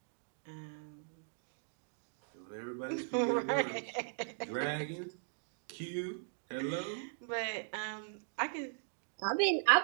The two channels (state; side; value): silent; left; digital silence